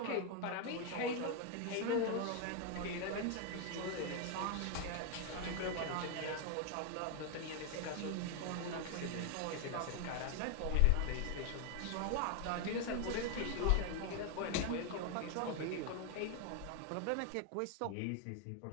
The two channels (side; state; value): both; different; correlation 0.01